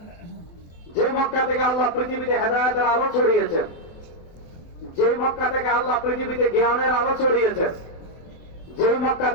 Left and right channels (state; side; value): late; right; 24 ms